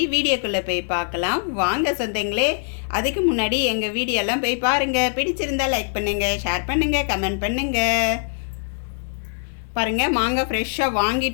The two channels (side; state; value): right; silent; digital silence